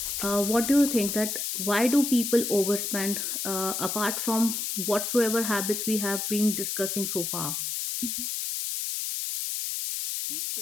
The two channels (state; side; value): noise; left; hiss, 2 dB below the sound